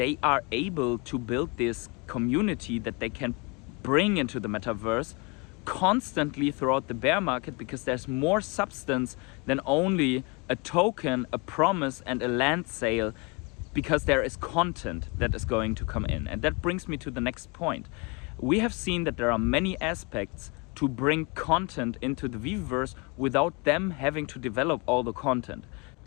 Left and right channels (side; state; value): right; quieter; 29.5 dB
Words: are able to build this community that they can bring into the metaverse constantly throughout the bear market, because there's more substance than only a token, a promise and a land sale, because there is content that is going to come in. And that brings me to the next point. We have seen that there are many aspects to bring content into the Veveverse without them having to develop all the content.